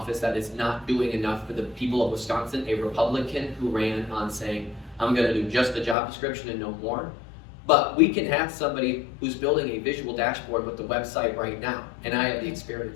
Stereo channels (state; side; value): drops out; right; at 6.0 s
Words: that is not doing enough for the people of Wisconsin, a Republican who ran on saying, I'm going to do just the job description and no more. But we can have somebody who's building a visual dashboard with the website right now, and I have the